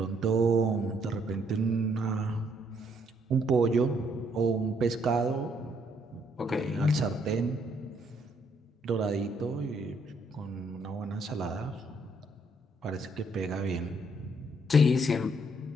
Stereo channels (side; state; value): both; normal; correlation 0.69